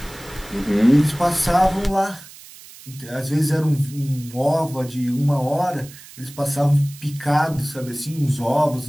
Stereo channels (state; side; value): noise; right; hiss, 19 dB below the sound